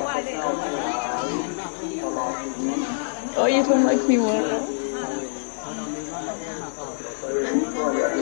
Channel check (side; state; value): right; silent; digital silence